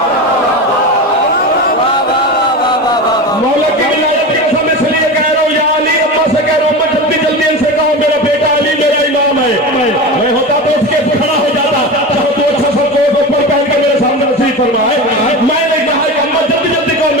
मौला की विलायत की कसम इसलिए कह रहा हूँ या अली, अम्मा से कह रहा हूँ, अम्मा जल्दी जल्दी इनसे कहो मेरा बेटा अली मेरा इमाम है। मैं होता तो उसके खड़ा हो जाता, तो अच्छा सा कोट ऊपर पहन के मेरे सामने नसीब फरमाए। मैंने कहा कि अम्मा जल्दी जल्दी कहो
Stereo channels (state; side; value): normal; both; correlation 0.26